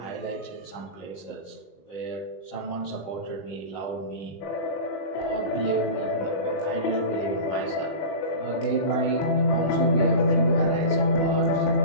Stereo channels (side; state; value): right; late; 20 ms